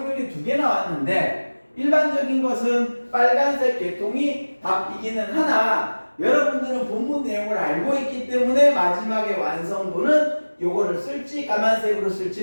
2개 나왔는데 일반적인 것은 빨간색 계통이 답이기는 하나 여러분들은 본문 내용을 알고 있기 때문에 마지막에 완성도는 요거를 쓸지 까만색으로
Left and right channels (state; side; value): inverted; both; correlation -1.00